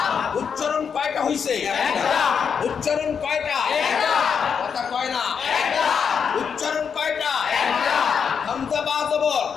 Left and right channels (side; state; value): right; quieter; 6.7 dB